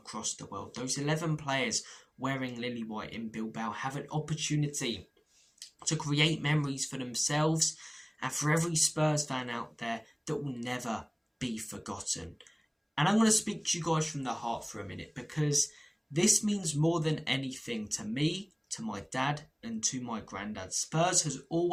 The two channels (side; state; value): both; identical; correlation 1.00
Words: the world. Those 11 players wearing lily white in Bilbao have an opportunity to create memories for themselves and for every Spurs fan out there that will never be forgotten. And I'm going to speak to you guys from the heart for a minute, because this means more than anything to me, to my dad, and to my granddad. Spurs has